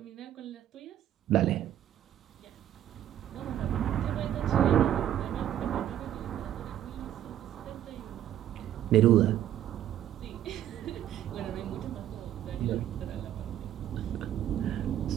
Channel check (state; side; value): quieter; left; 11.5 dB